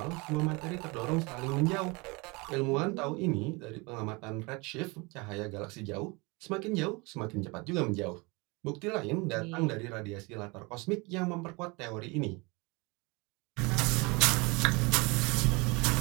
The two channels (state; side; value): quieter; left; 27.0 dB